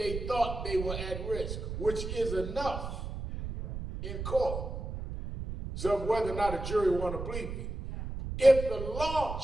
thought they were at risk, which is enough in court. So whether or not a jury want to believe it. If the law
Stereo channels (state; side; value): noise; right; rumble, 6 dB below the sound